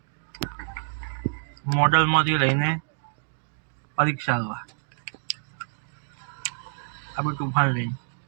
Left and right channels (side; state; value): left; silent; digital silence